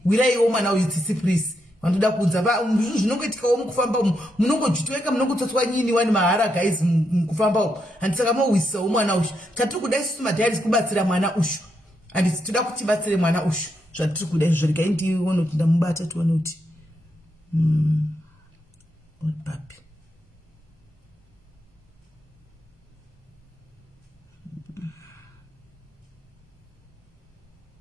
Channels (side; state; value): both; normal; correlation 0.81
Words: Wiraiwo mwana uyu tsitsi please. Vandoda kunza zvinongoitikawo mukufamba umu munongojitweka munongotsotswa nyini wani mahara guys mukufamba umu. Handisaka mowisawo mwana ushu. Tatiri kuda isusu madhairis kubatsira mwana ushu. Handisi toda kuti tibatsire mwana ushu. Zvatiri kuda izvo regai ndione kuti ndamubata tione kuti papi.